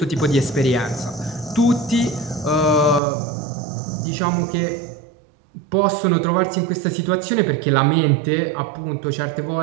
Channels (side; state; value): left; drops out; at 3.0 s